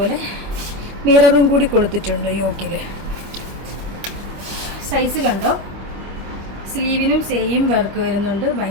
മിററും കൂടി കൊടുത്തിട്ടുണ്ട് യോക്കില്. സൈസ് കണ്ടോ, സ്ലീവിനും സെയിം വർക്ക് വരുന്നുണ്ട്.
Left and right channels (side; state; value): left; late; 25 ms